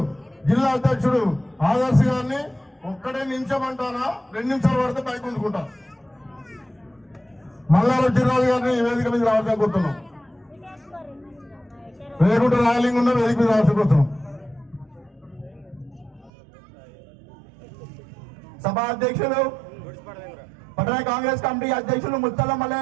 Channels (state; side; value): drops out; left; at 16.3 s